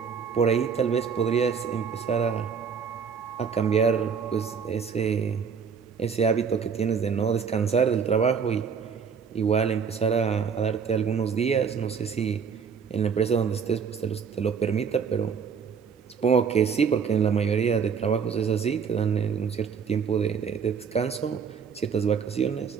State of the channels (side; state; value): left; quieter; 6.3 dB